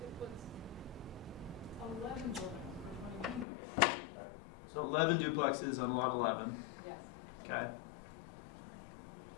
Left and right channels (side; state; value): right; drops out; at 3.5 s